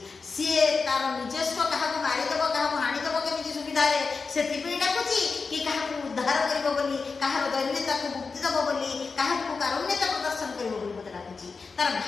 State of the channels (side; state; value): right; quieter; 4.7 dB